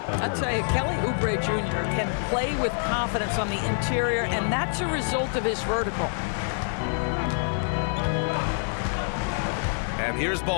say Kelly Oubre Jr. can play with confidence on the interior, and that's a result of his vertical. And here's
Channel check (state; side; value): silent; right; 61 dB below the other